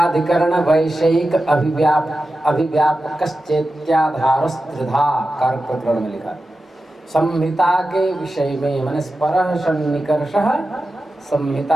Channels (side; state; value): both; normal; correlation 0.92